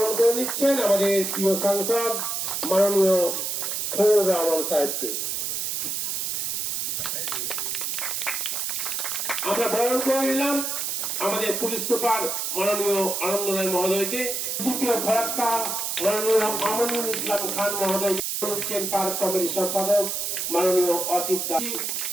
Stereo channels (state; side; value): noise; right; hiss, 1 dB below the sound